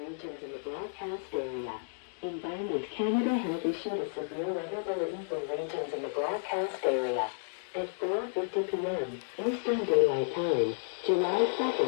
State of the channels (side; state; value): right; silent; digital silence